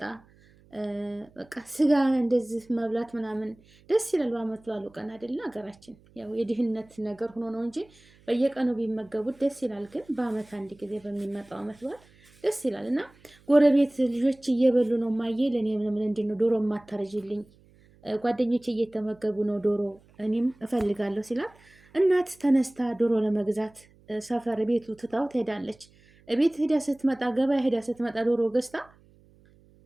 በቃ ስጋ እንደዚህ መብላት ምናምን ደስ ይላል። በአመት በዓሉ ቀን አይደለ? ሀገራችን ያው የድህነት ነገር ሆኖ ነው እንጂ በየቀኑ ቢመገቡት ደስ ይላል። ግን በአመት አንድ ጊዜ በሚመጣው አመት በዓል ደስ ይላል። እና ጎረቤት ልጆች እየበሉ ነው ማየ ለእኔ ምን እንዴት ነው ዶሮ የማታረጅልኝ? ጓደኞች እየተመገቡ ነው ዶሮ እኔም እፈልጋለሁ ሲላት እናት ተነስታ ዶሮ ለመግዛት ሰፈር ቤቱ ትታው ትሄዳለች። ቤት ሄዳ ስትመጣ ገበያ ሄዳ ስትመጣ ዶሮ ገዝታ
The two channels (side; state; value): right; noise; hum, 29 dB below the sound